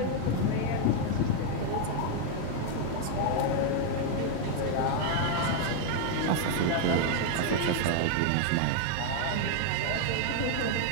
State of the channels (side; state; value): both; different; correlation 0.00